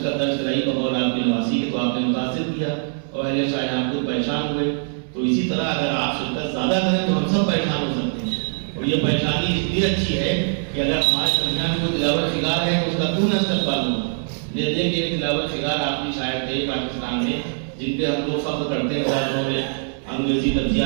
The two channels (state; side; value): silent; left; 60 dB below the other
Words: درج کرائی بغور آپ کی نواسی کی, تو آپ نے متاثر کیا اور اہل شاہجہاں پور پریشان ہوئے. تو اسی طرح اگر آپ شرکت زیادہ کریں تو ہم سب پریشان ہو سکتے ہیں. اور یہ پریشانی اس لیے اچھی ہے کہ اگر ہمارے درمیان کوئی تلاوت شکار ہے تو اس کا کیوں نہ استقبال ہو. یہ دیکھیں کہ تلاوت شکار آپ کی شاعر تھے پاکستان میں, جن پہ ہم لوگ فخر کرتے ہیں. انہوں نے انگریزی